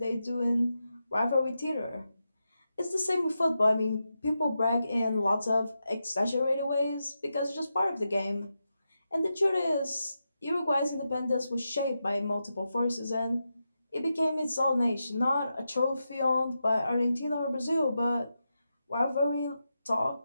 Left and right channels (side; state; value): both; inverted; correlation -0.88